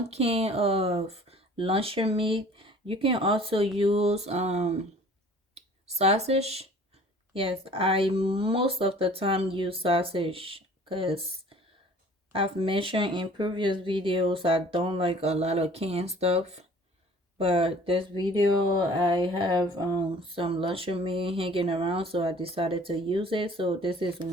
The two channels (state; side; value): normal; both; correlation 0.50